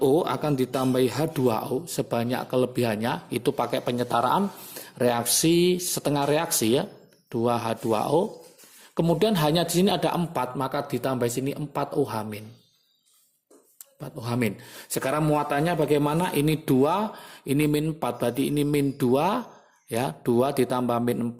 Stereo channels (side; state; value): both; identical; correlation 1.00